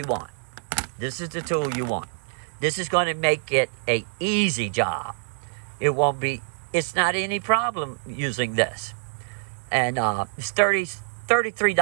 want. This is the tool you want. This is going to make it an easy job. It's not any problem using this. And it's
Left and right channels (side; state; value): left; silent; 61 dB below the other